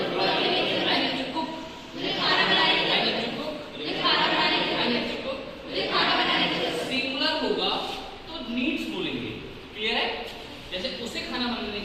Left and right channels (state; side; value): identical; both; correlation 1.00